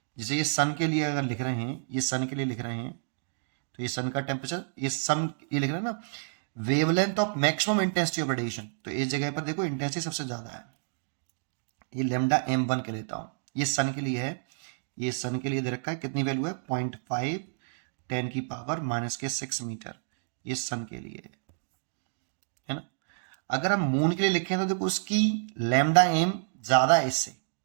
जैसे ये सन के लिए अगर लिख रहे हैं, ये सन के लिए लिख रहे हैं, तो ये सन का टेम्परेचर, ये लिख रहे हैं ना, wavelength of maximum intensity of radiation. तो इस जगह पर देखो इंटेंसिटी सबसे ज्यादा है, ये लेमडा M1 के लेता हूं। ये सन के लिए है, ये सन के लिए दे रखा है, कितनी वैल्यू है 0.5 10 की पावर माइनस के 6 मीटर, ये सन के लिए है ना। अगर हम मून के लिए लिखें तो देखो उसकी लेमडा एम ज्यादा है इससे,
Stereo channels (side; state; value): left; silent; digital silence